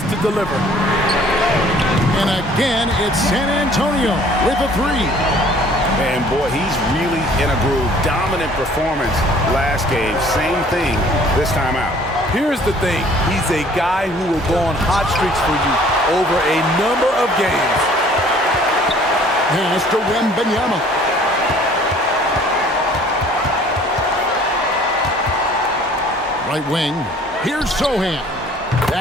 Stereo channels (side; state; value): both; normal; correlation 0.54